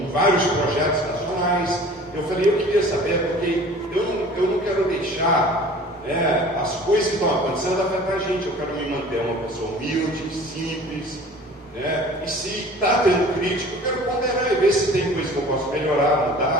vários projetos nacionais. Eu falei, eu queria saber, porque eu não quero deixar as coisas que estão acontecendo afetam a gente. Eu quero me manter uma pessoa humilde, simples, e se está tendo crítica, eu quero ponderar e ver se tem coisa que eu posso melhorar,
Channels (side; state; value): both; normal; correlation 0.45